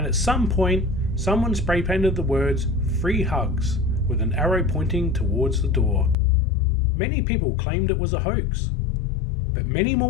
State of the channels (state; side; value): drops out; right; at 6.2 s